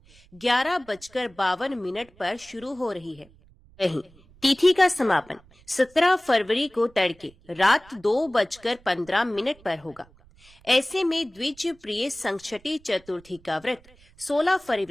11:52 पर शुरू हो रही है। वहीं तिथि का समापन 17 फरवरी को तड़के रात 2:15 पर होगा। ऐसे में द्विज प्रिय संकष्टी चतुर्थी का व्रत 16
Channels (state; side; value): noise; right; rumble, 27 dB below the sound